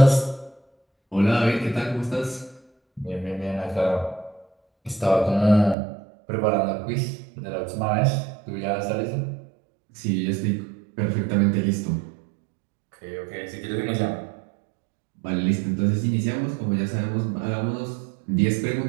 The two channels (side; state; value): left; drops out; at 5.8 s